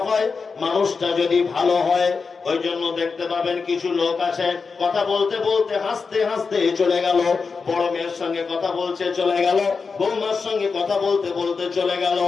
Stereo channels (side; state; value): right; quieter; 4.9 dB